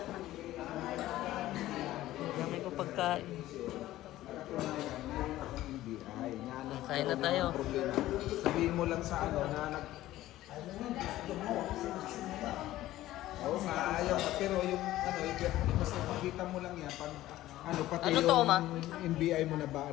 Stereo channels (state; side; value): quieter; right; 15.2 dB